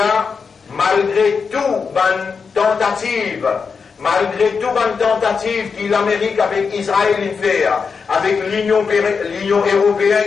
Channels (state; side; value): quieter; right; 5.5 dB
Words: malgré tout, malgré toute tentative que l'Amérique avec Israël fait, avec l'Union